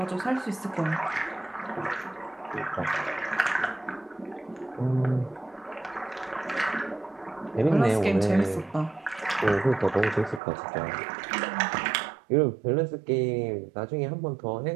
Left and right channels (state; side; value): drops out; left; at 10.4 s